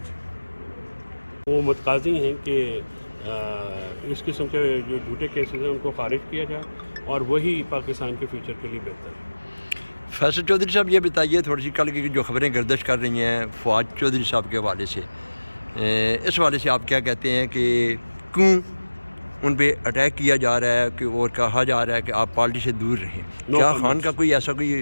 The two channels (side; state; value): both; inverted; correlation -1.00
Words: وہ متقاضی ہیں کہ اس قسم کے جو جھوٹے کیسز ہیں ان کو خارج کیا جائے اور وہی پاکستان کے فیوچر کے لیے بہتر ہے۔ فیصل چودھری صاحب یہ بتائیے تھوڑی سی کل کی جو خبریں گردش کر رہی ہیں فواد چودھری صاحب کے حوالے سے اس حوالے سے آپ کیا کہتے ہیں کہ کیوں ان پہ اٹیک کیا جا رہا ہے کہ اور کہا جا رہا ہے کہ آپ پارٹی سے دور رہیں؟ کیا خان کا کوئی ایسا